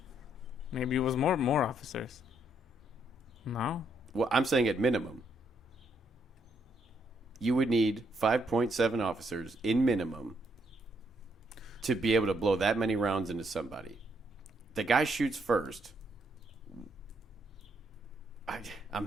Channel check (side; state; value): both; normal; correlation 0.73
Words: Maybe it was more officers. No? Well, I'm saying at minimum. You would need 5.7 officers in minimum to be able to blow that many rounds into somebody. The guy shoots first. I'm